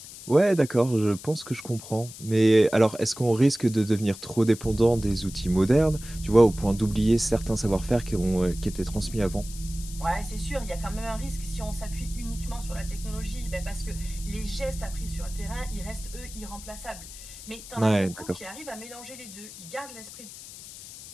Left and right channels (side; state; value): left; noise; hiss, 15 dB below the sound